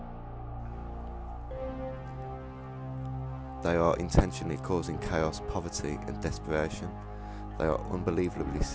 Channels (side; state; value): both; identical; correlation 1.00